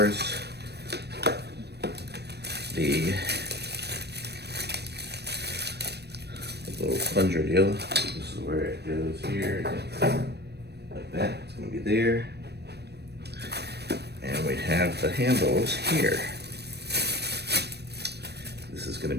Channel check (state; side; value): late; left; 0.48 ms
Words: The little plunger deal. This is where it goes here, like that. It's gonna be there. And we have the handles here. This is gonna